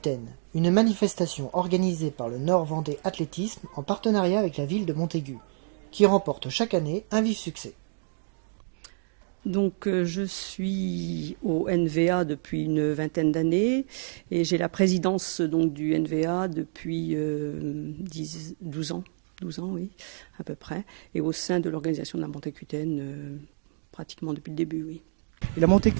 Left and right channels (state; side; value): silent; left; digital silence